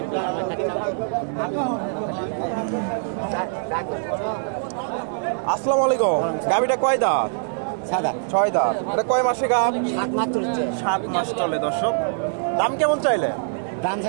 আসসালামু আলাইকুম। গাভীটা কয় দাঁত? 6 দাঁত। এটা কয় মাসে গাভ? 7 মাস চলে দর্শক। দাম কেমন চাইলে? দাম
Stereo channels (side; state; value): left; silent; 63 dB below the other